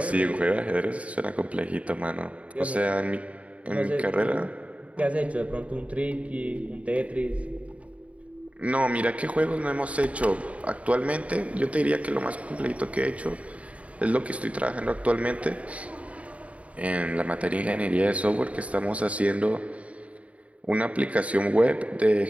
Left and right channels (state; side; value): late; left; 0.066 ms